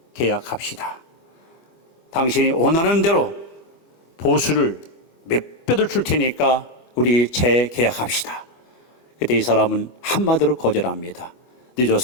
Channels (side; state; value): right; late; 25 ms